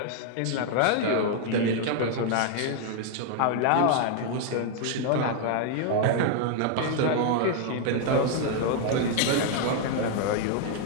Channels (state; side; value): different; both; correlation 0.00